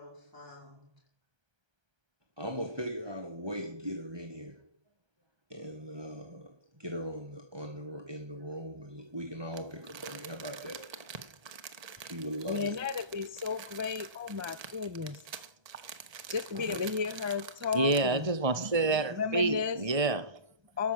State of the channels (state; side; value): late; left; 1.3 ms